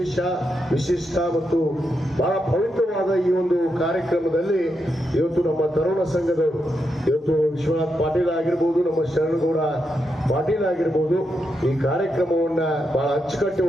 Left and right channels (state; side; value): normal; both; correlation 0.84